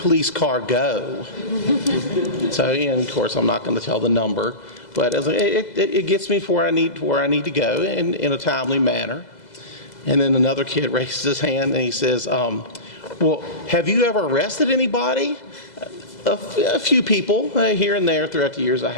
car go?" So, and of course, I'm not going to tell the number, but it gets me to where I need to go in a timely manner. And then another kid raises his hand and he says, "Well, have you ever arrested anybody?" A few people here and there throughout the years I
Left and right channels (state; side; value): late; right; 2.0 ms